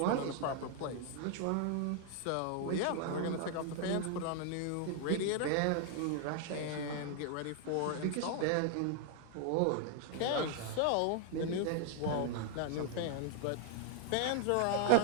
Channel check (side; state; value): both; different; correlation 0.00